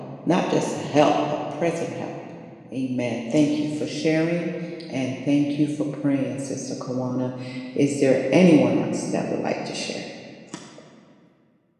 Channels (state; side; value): identical; both; correlation 1.00